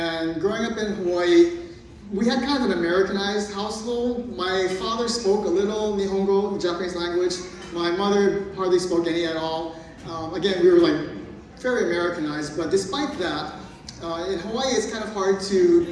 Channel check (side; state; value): both; identical; correlation 1.00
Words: growing up in Hawaii, we had kind of an Americanized household. My father spoke a little Nihongo, the Japanese language. My mother hardly spoke any at all. Again, we were like very Americanized, but despite that, in Hawaii it's kind of hard